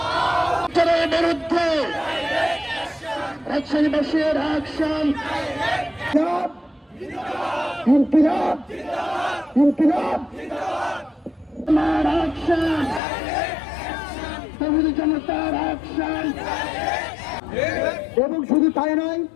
বিরুদ্ধে রাজশাহীবাসীর অ্যাকশন ইনকিলাব ইনকিলাব আমার অ্যাকশন তৌহিদি জনতার অ্যাকশন। এবং শুধু তাই নয়,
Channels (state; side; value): drops out; right; at 13.0 s